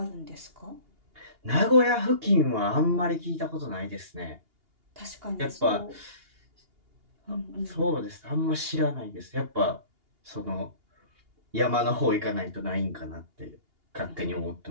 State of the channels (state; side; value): late; left; 2.8 ms